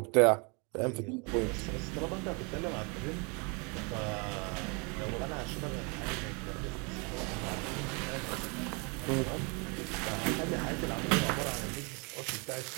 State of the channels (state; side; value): quieter; left; 32.3 dB